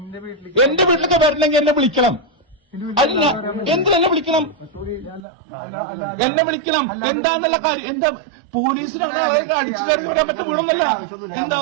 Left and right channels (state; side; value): drops out; left; at 5.2 s